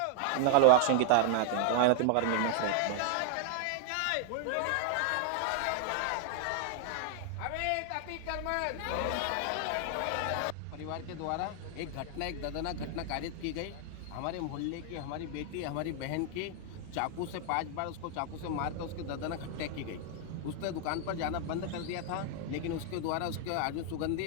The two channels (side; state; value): both; different; correlation 0.00